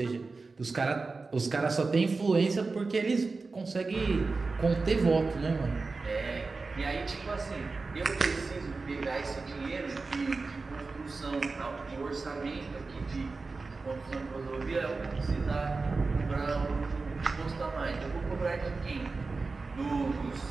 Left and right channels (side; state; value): left; quieter; 4.0 dB